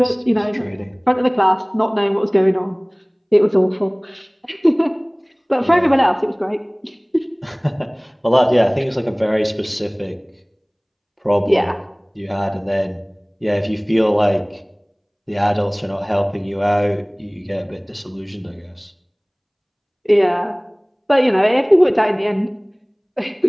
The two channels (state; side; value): identical; both; correlation 1.00